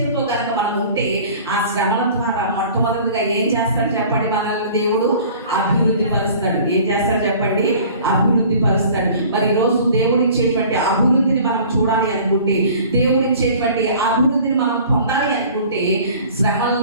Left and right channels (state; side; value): inverted; both; correlation -0.47